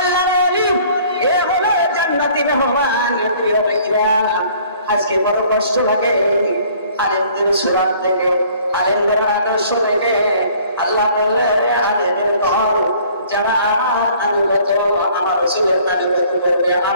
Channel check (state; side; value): inverted; both; correlation -0.56